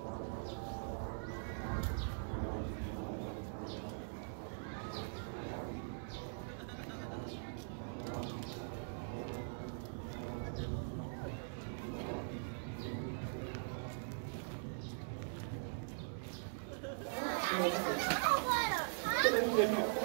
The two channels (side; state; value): left; silent; digital silence